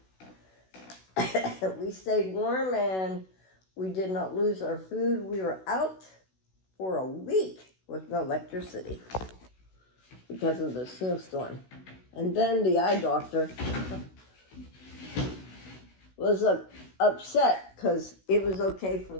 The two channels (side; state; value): right; late; 16 ms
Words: We stayed warm, and we did not lose our food. We were out for a week with no electricity because of the snowstorm. And then the eye doctor was upset because it was okay for